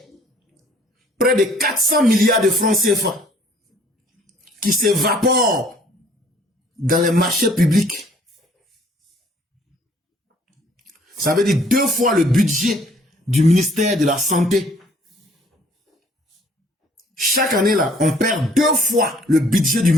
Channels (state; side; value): normal; both; correlation 0.59